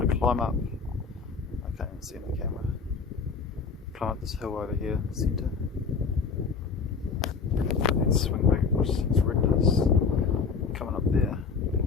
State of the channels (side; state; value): right; quieter; 5.3 dB